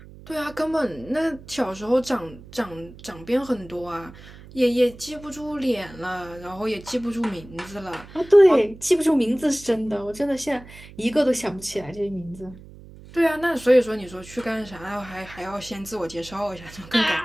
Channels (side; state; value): right; noise; hum, 19 dB below the sound